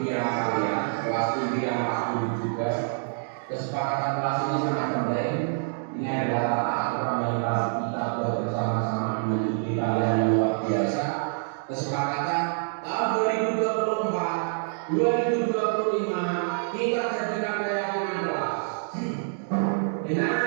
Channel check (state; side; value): silent; left; digital silence